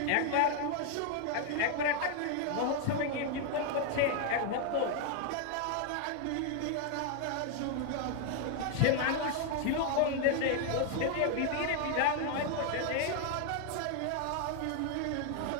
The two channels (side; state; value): both; different; correlation 0.00